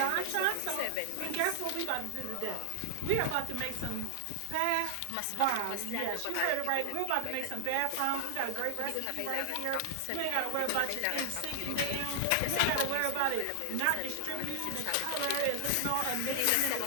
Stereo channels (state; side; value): different; both; correlation 0.00